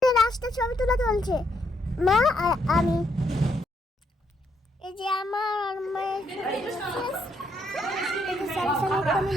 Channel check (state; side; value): normal; both; correlation 0.75